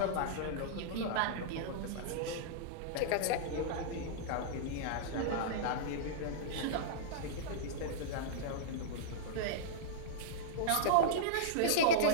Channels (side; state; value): both; different; correlation -0.03